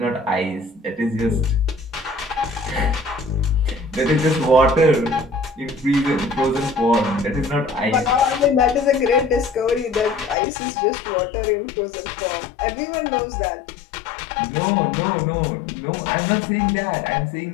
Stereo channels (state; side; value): drops out; right; at 10.4 s